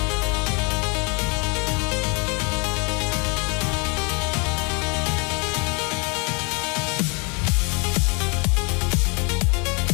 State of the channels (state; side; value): quieter; right; 32.1 dB